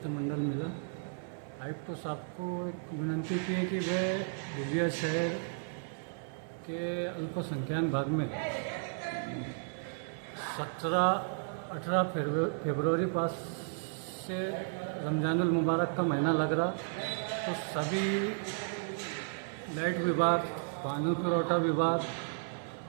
मिला. आयुक्त साहब को एक विनंती की है कि वे धुलिया शहर के अल्पसंख्यक भाग में 17-18 फरवरी पास से रमजानुल मुबारक का महीना लग रहा, तो सभी लाइट विभाग, पानी पुरवठा विभाग,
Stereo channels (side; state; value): left; silent; 55 dB below the other